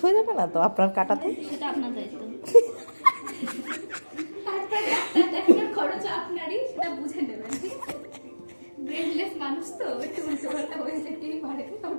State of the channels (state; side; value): inverted; both; correlation -1.00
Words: হয়ে যাবে না তো আপনার কাটাতে? সেটা আপনার দায়িত্ব। খরচ আপনারই, সেটা বুঝে নেবেন। ব্রেনলেস মানুষ তো একটু উল্টোপাল্টা হয়ে যেতেই পারে,